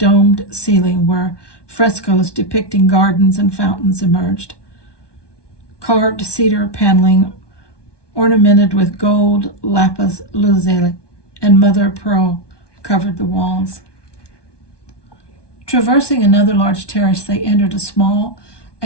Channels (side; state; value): right; late; 1.2 ms